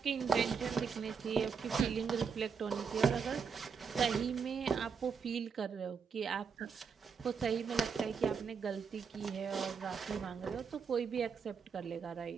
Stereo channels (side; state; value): left; quieter; 5.9 dB